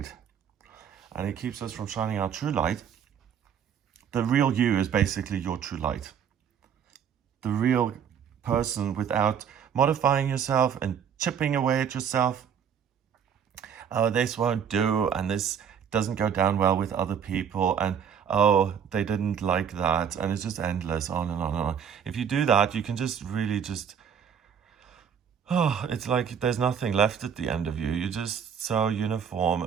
And it keeps us from shining our true light. The real you is basically your true light. The real person, without modifying yourself and chipping away at yourself. Oh, this won't do, and this doesn't go down well with other people, and oh, they didn't like that, and it's just endless, on and on and on. If you do that, you can just really it's like there's nothing left at the end of you. You're just so uniform,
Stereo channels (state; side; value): quieter; left; 7.8 dB